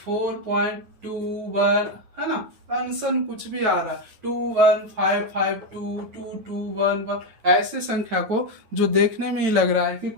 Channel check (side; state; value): left; late; 9.3 ms